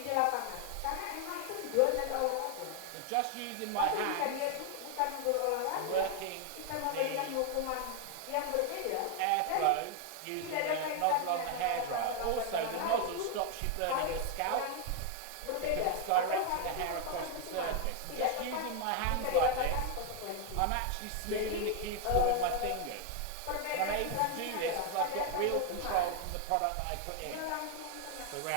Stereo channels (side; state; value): both; different; correlation 0.00